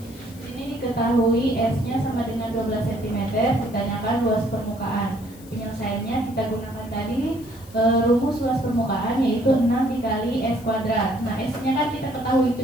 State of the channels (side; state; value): left; noise; hiss, 23 dB below the sound